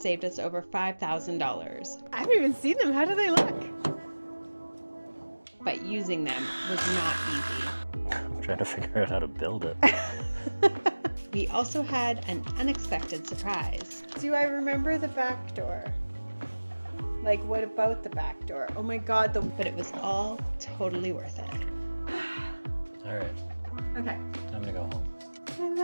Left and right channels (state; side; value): inverted; both; correlation -1.00